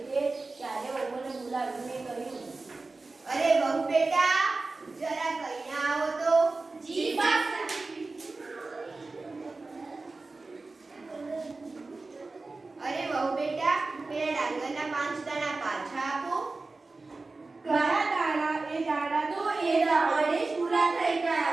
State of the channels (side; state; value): left; quieter; 3.6 dB